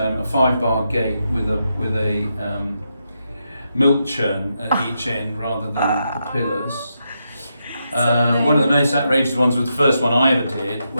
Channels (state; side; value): inverted; both; correlation -0.84